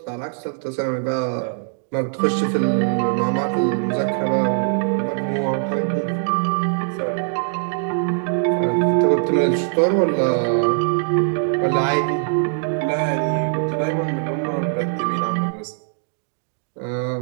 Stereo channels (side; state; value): left; silent; 64 dB below the other